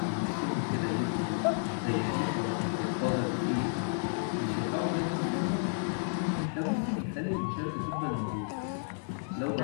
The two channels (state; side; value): silent; right; 57 dB below the other